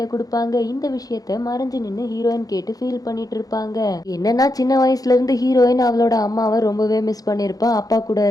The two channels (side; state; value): right; late; 0.18 ms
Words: கொடுப்பாங்க. இந்த விஷயத்த மறைஞ்சு நின்று ஹீரோயின் கேட்டு ஃபீல் பண்ணிட்டு இருப்பாங்க. என்னன்னா சின்ன வயசுல இருந்து ஹீரோயின் அவளோட அம்மாவை ரொம்பவே மிஸ் பண்ணிருப்பா அப்பா கூட